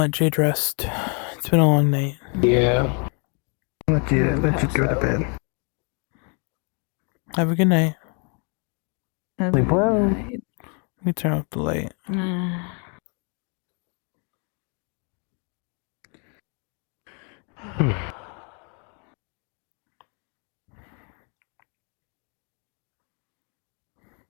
Jade rest. It's been a long night. Yeah. Let you go to bed. Have a good night. Sleep well. Let me turn off the light.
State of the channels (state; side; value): quieter; right; 37.5 dB